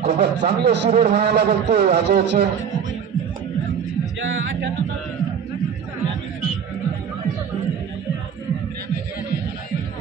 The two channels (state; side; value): quieter; left; 7.5 dB